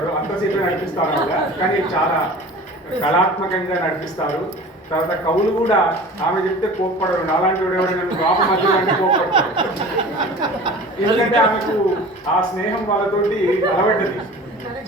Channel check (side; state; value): both; normal; correlation 0.40